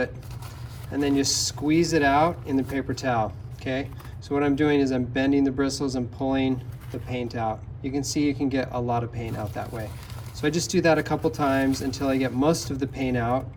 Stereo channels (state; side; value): identical; both; correlation 1.00